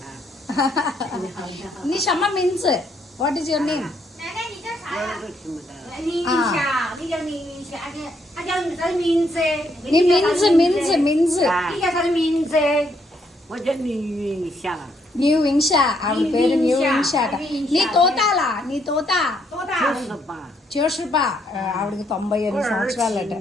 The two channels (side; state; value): both; normal; correlation 0.73